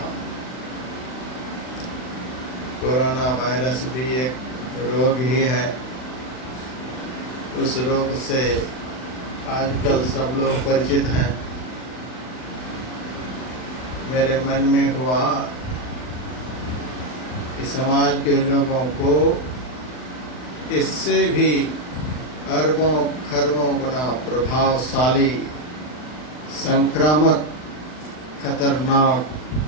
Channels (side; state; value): right; late; 39 ms